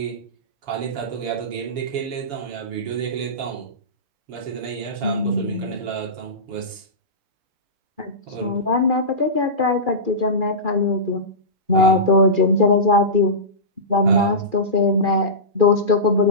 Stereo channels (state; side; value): late; left; 7.1 ms